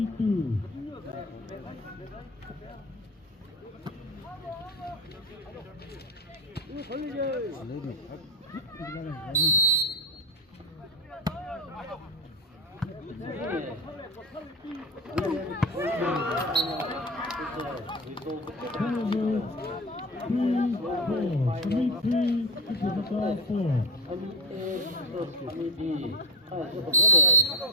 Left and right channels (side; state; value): both; normal; correlation 0.18